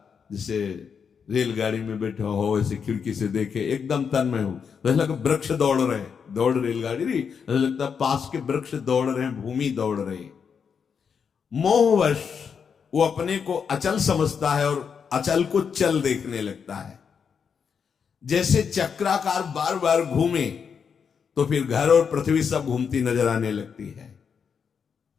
जैसे रेलगाड़ी में बैठा हो, ऐसे खिड़की से देखे, एकदम तन्मय हो, तो ऐसा लगता वृक्ष दौड़ रहे, दौड़ रेलगाड़ी रही, ऐसा लगता पास के वृक्ष दौड़ रहे हैं, भूमि दौड़ रही। मोहवश वो अपने को अचल समझता है और अचल को चल देखने लगता है। जैसे चक्राकार बार बार घूमे तो फिर घर और पृथ्वी सब घूमती नजर आने लगती है।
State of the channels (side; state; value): right; quieter; 6.6 dB